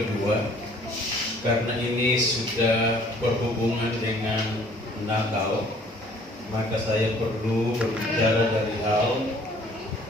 karena ini sudah berhubungan dengan Natal. Maka saya perlu berbicara dari hal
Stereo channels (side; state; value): both; normal; correlation 0.56